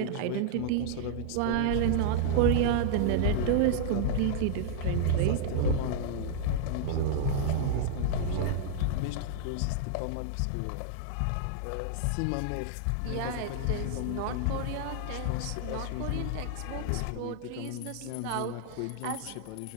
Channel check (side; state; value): both; different; correlation -0.01